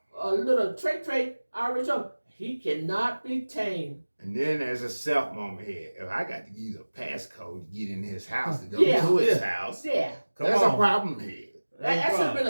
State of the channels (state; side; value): inverted; both; correlation -1.00